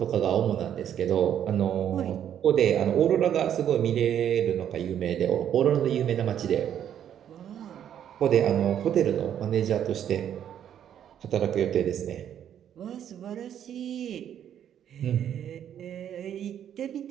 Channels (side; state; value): left; quieter; 9.8 dB